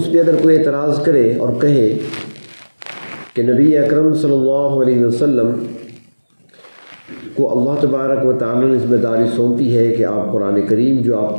پہ اگر کوئی اعتراض کرے اور کہے کہ نبی اکرم صلی اللہ علیہ وسلم کو اللہ تبارک و تعالی نے ذمہ داری سونپی ہے کہ آپ قرآن کریم جو آپ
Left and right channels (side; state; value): both; inverted; correlation -1.00